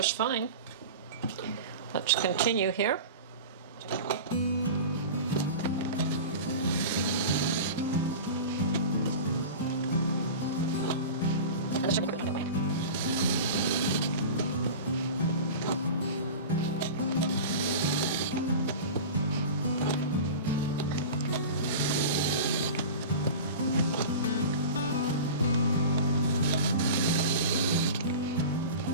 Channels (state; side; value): inverted; both; correlation -0.32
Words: fine. Let's continue here.